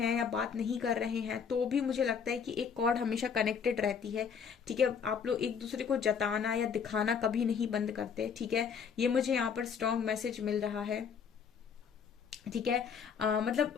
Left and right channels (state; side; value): quieter; right; 6.7 dB